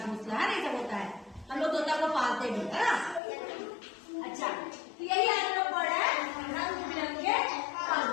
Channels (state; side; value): drops out; right; at 3.2 s